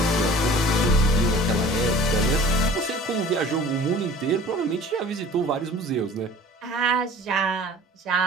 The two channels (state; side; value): normal; both; correlation 0.46